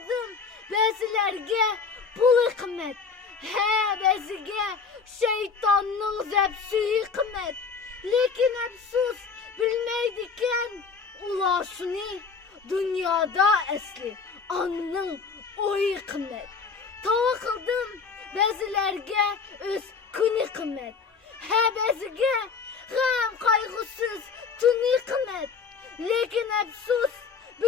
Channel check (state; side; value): quieter; right; 5.2 dB